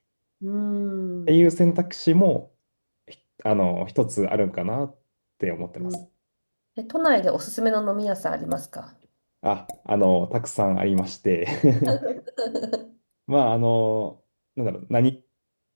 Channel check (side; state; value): both; inverted; correlation -1.00